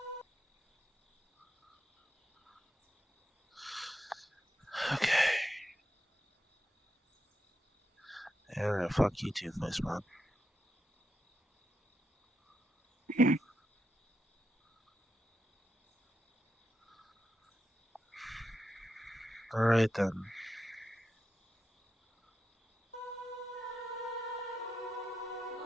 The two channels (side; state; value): both; normal; correlation 0.86